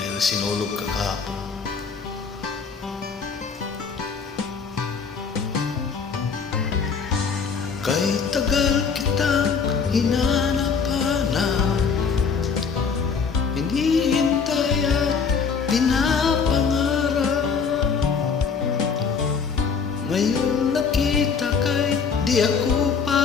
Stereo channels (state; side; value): quieter; right; 5.7 dB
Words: sinulog ka kahapon. Kay tagal kitang hinanap-hanap, hinihintay at pinapangarap. Ngayon nakita kay di ako